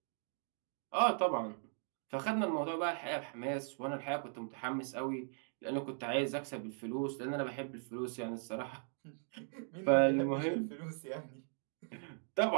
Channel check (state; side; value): silent; left; 52 dB below the other